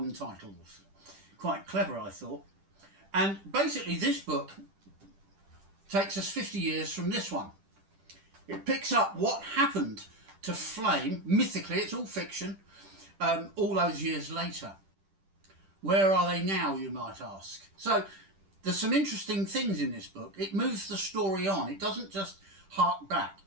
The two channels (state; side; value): late; left; 10 ms